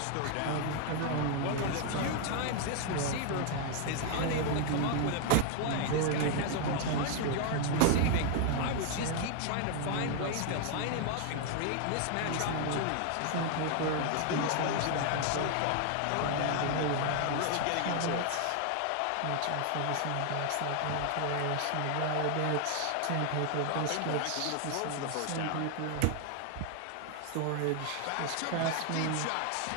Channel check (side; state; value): both; different; correlation 0.00